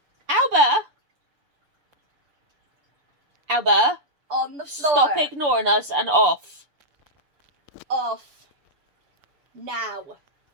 Alba, On the floor. stop ignoring us and off. Off. Now.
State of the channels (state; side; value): late; left; 6.9 ms